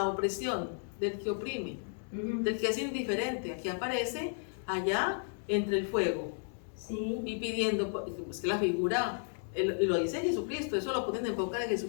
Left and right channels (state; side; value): silent; right; 55 dB below the other